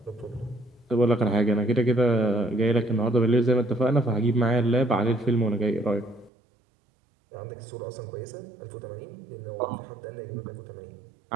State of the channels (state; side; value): drops out; left; at 6.3 s